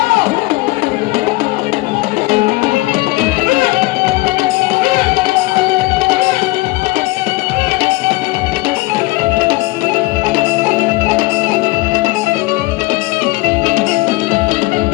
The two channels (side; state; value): right; quieter; 21.4 dB